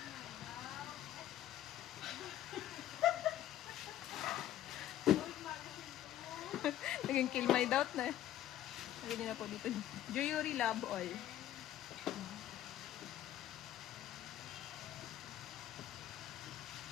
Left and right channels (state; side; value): quieter; right; 12.4 dB